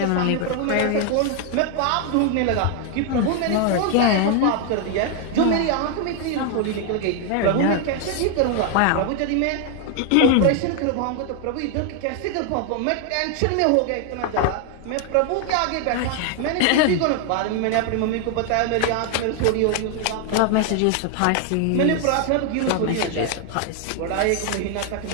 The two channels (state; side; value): different; both; correlation 0.00